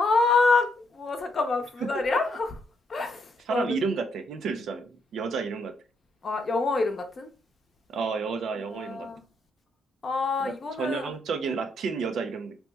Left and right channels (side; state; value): both; normal; correlation 0.75